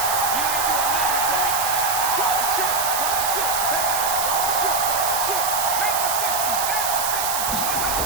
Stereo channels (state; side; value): noise; right; hiss, 1 dB below the sound